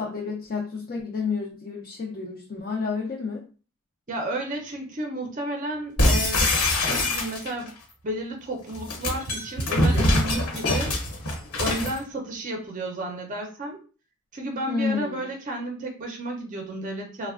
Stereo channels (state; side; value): normal; both; correlation 0.49